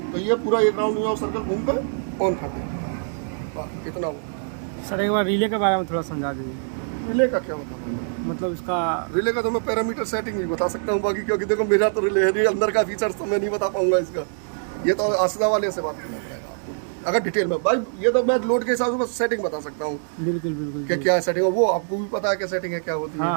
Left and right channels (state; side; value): silent; left; digital silence